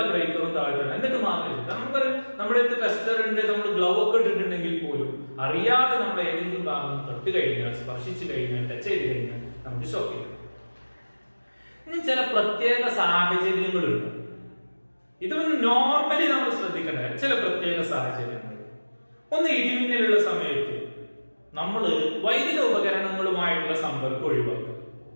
ബ്രേക്കറും താഴ്ത്തണം. എന്നിട്ട് മാത്രമേ നമുക്ക് നമ്മുടെ അടുത്ത് ടെസ്റ്റർ ഉണ്ട്, നമ്മൾ ഗ്ലൗ ഒക്കെ ഇട്ടിട്ടുണ്ടെങ്കിൽ പോലും അറിയാതെ നമ്മൾ ഏതെങ്കിലും ഭാഗം തൊട്ട് കഴിഞ്ഞാൽ, സ്പർശിച്ചു കഴിഞ്ഞാൽ, ടച്ച് ചെയ്ത് കഴിഞ്ഞാൽ നമുക്ക് ഷോക്ക് ചെയ്യും. ഇനി ചില പ്രത്യേക സാഹചര്യങ്ങളുണ്ട്. ഇത് നോർമലി നമ്മൾ ശ്രദ്ധിക്കേണ്ട ചില പ്രത്യേക സാഹചര്യങ്ങൾ. ഒന്ന്, ഇടിമിന്നലുള്ള സമയത്ത് നമ്മൾ വൈദ്യുത ഉപകരണങ്ങളുമായിട്ടുള്ള സമ്പർക്കം ഒഴിവാക്കുക.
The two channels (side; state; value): both; inverted; correlation -1.00